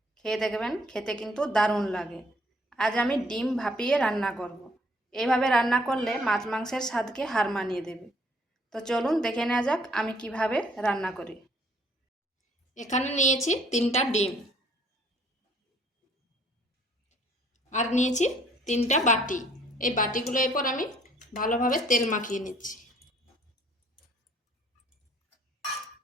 খেয়ে দেখবেন, খেতে কিন্তু দারুণ লাগে। আজ আমি ডিম ভাপিয়ে রান্না করব। এইভাবে রান্না করলে মাছ মাংসের স্বাদকে হার মানিয়ে দেবে। তো চলুন দেখে নেওয়া যাক আমি কিভাবে রান্না করি। এখানে নিয়েছি 3টা ডিম, আর নিয়েছি 3টা বাটি। এই বাটিগুলো এরপর আমি ভালোভাবে তেল মাখিয়ে নিচ্ছি।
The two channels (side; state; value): both; normal; correlation 0.61